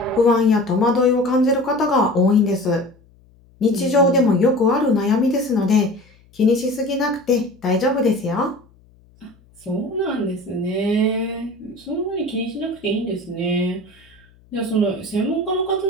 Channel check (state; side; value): noise; left; hum, 30 dB below the sound